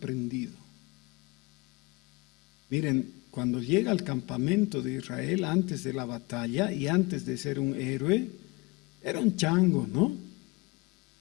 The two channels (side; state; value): right; quieter; 24.8 dB